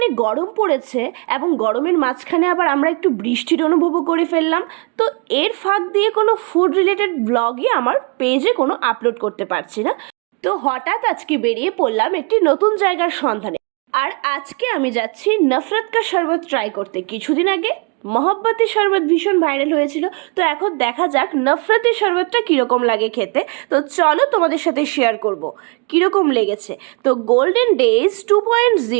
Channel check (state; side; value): quieter; left; 33.3 dB